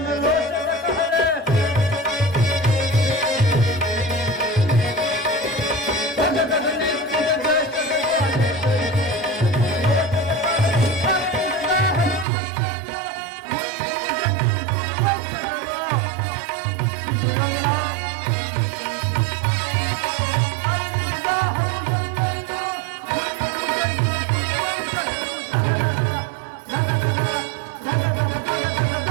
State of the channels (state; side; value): drops out; left; at 12.2 s